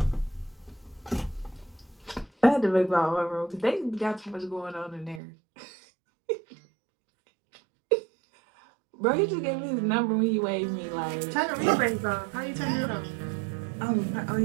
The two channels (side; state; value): left; drops out; at 5.2 s